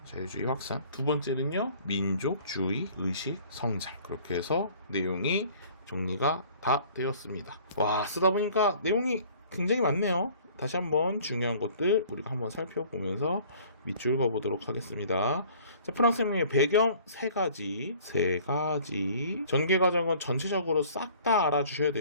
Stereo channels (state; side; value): inverted; both; correlation -0.52